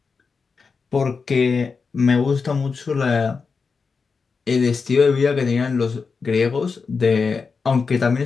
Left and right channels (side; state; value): right; quieter; 5.0 dB